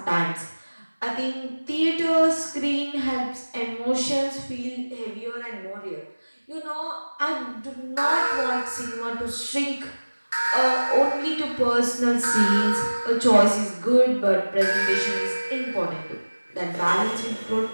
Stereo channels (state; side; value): inverted; both; correlation -1.00